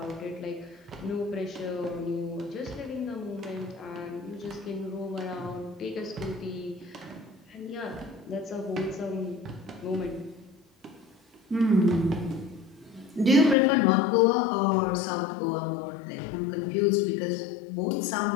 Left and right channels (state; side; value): drops out; right; at 13.6 s